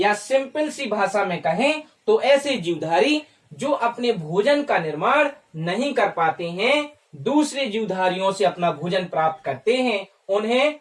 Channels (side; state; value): both; identical; correlation 1.00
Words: सिंपल सी भाषा में कहें तो ऐसे जीवधारी जो अपने भोजन का निर्माण नहीं कर पाते हैं, दूसरे जीवधारियों से अपना भोजन प्राप्त करते हैं, उन्हें